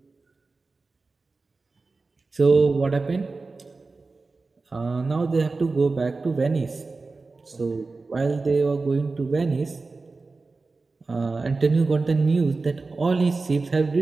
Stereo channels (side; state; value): left; quieter; 3.8 dB